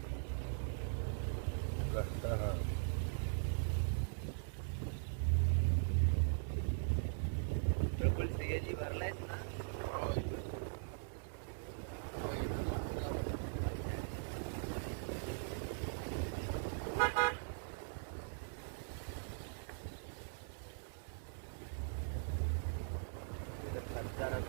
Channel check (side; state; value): left; silent; digital silence